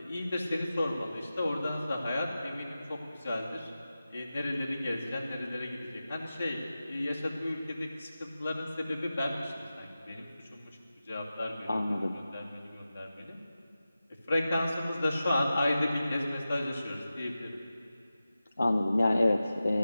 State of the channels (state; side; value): inverted; both; correlation -0.94